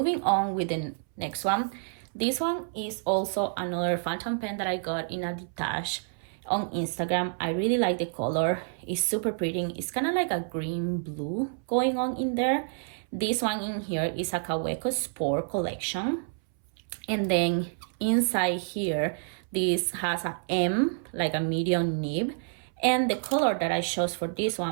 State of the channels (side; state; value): left; silent; 59 dB below the other